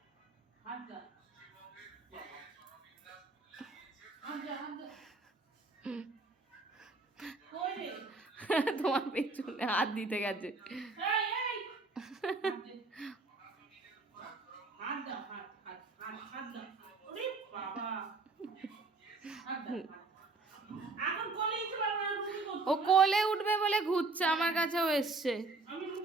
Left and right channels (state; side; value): quieter; left; 3.6 dB